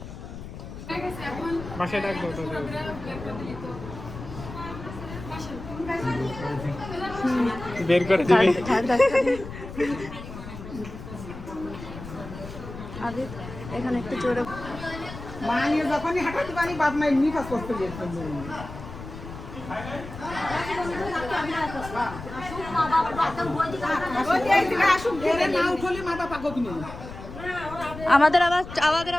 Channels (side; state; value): left; noise; rumble, 12 dB below the sound